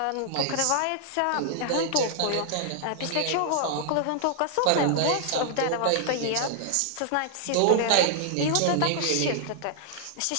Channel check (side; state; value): both; different; correlation -0.01